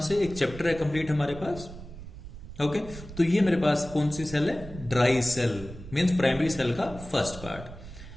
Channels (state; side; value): noise; right; rumble, 14 dB below the sound